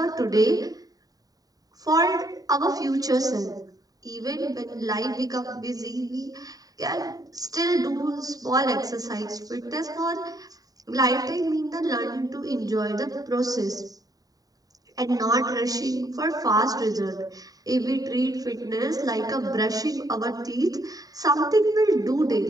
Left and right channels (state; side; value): late; left; 0.18 ms